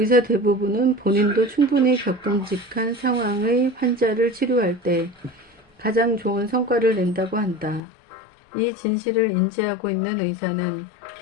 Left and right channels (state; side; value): drops out; right; at 7.8 s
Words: 대부분은 본인도 충분히 겪음직한 상황의 환자를 치료할 때 가장 좋은 성과를 낸다고 한다. 이 진실을 인지하고 있는 의사는